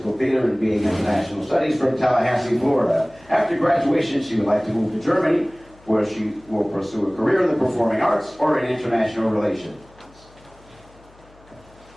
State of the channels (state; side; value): noise; left; hum, 27 dB below the sound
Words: Theater and BA International Studies from Tallahassee, Florida. After graduation, she would like to move to Germany, where she will pursue a career in the performing arts or in international relations.